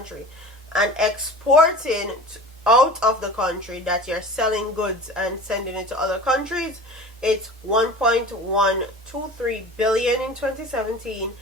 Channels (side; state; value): both; normal; correlation 0.37